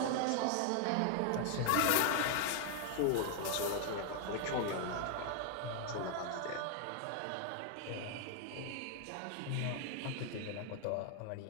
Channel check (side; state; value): both; different; correlation 0.00